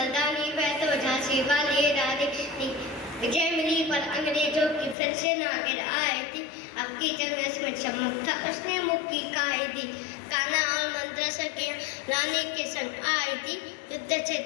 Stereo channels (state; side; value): drops out; right; at 5.0 s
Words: वह तो झांसी वाली रानी थी। विजय मिली पर अंग्रेजों की फिर से ना गिर आई थी। अब की जंग में चमक था उसने मुक्की खाई थी। कान्हा और मंत्र की रानी के संग आई थी। युद्ध